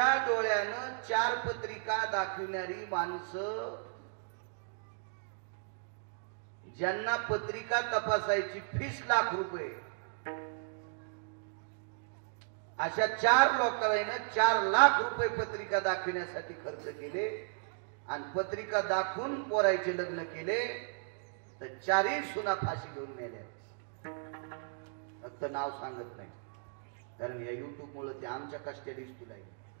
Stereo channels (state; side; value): silent; left; digital silence